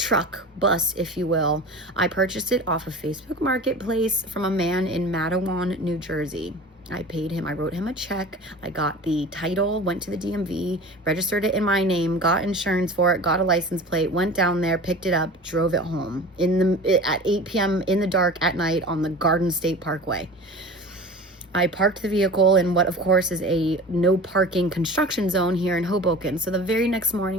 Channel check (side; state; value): both; normal; correlation 0.37